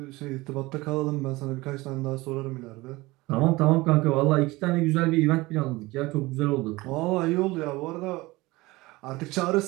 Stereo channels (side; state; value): left; quieter; 21.0 dB